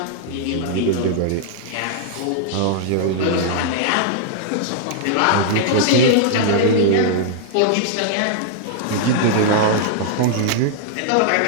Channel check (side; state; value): both; different; correlation -0.01